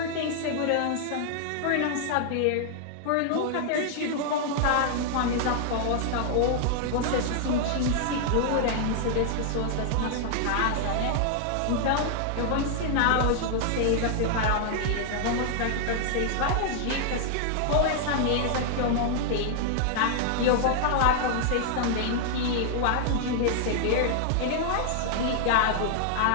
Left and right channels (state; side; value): different; both; correlation -0.01